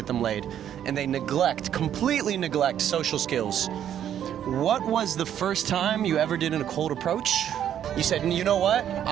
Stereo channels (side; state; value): left; quieter; 10.1 dB